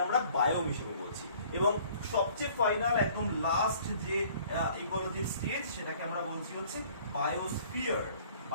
আমরা বায়োম হিসেবে বলছি। এবং সবচেয়ে ফাইনাল, একদম লাস্ট যে ইকোলজির স্টেজ, সেটাকে আমরা বলছি হচ্ছে বায়োস্ফিয়ার।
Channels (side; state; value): both; inverted; correlation -0.55